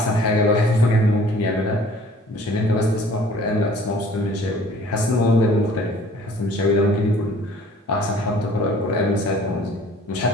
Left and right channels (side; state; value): both; normal; correlation 0.52